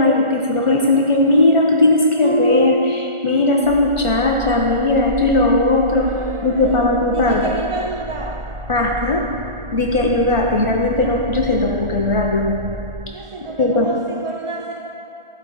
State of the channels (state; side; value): late; left; 1.4 ms